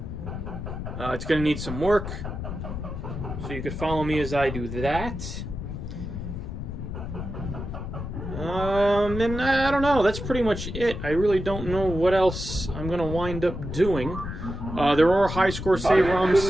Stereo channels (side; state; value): left; noise; rumble, 6 dB below the sound